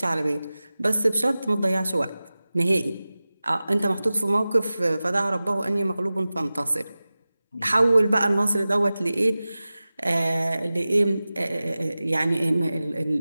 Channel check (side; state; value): both; inverted; correlation -0.96